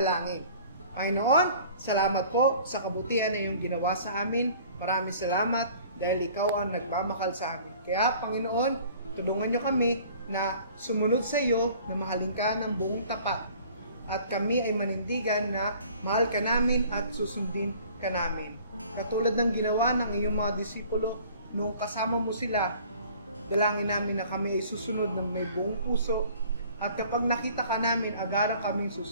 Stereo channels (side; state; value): both; inverted; correlation -0.51